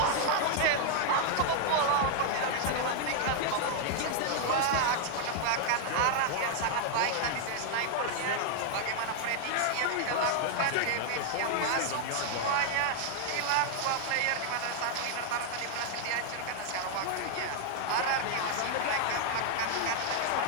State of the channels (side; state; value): both; different; correlation 0.00